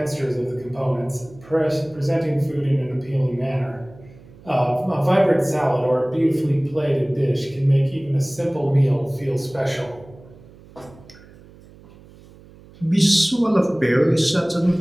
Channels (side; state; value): right; noise; hum, 23 dB below the sound